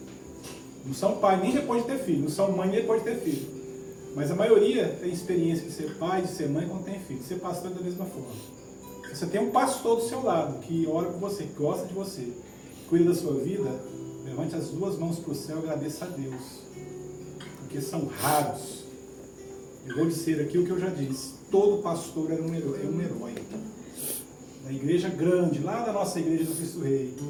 Não são pai nem depois de ter filho. Não são mãe nem depois de ter filho. Mas a maioria tem experiência de ser pai, de ser mãe quando tem filho. De ser pastor da mesma forma. Você tem um pastor do seu lado que ora por você, que gosta de você, que cuida da sua vida. Levante as duas mãos para o céu e agradeça a Deus. Porque são raros. Eu vou dizer aqui o que eu já disse. Todo pastor é um herói. Na igreja grande, lá da nossa igreja do Cristo Rei,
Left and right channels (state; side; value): identical; both; correlation 1.00